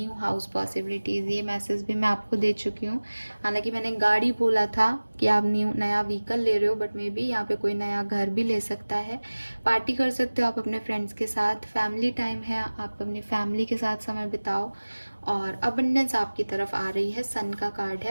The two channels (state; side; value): inverted; both; correlation -1.00